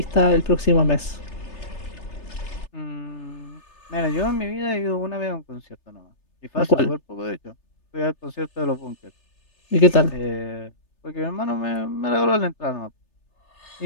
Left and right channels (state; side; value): late; right; 3.3 ms